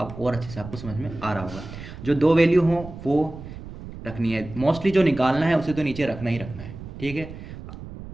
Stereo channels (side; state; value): right; noise; rumble, 13 dB below the sound